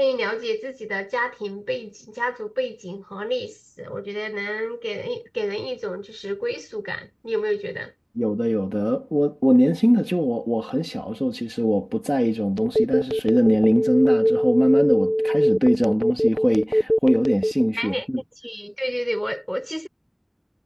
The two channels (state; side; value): identical; both; correlation 1.00